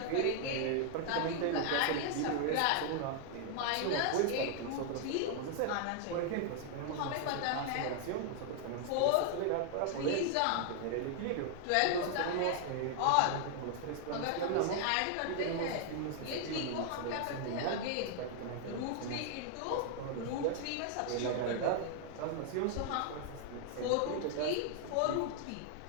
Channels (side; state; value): both; different; correlation 0.00